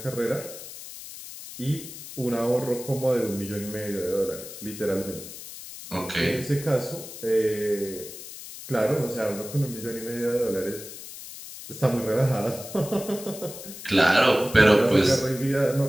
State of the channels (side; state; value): left; noise; hiss, 13 dB below the sound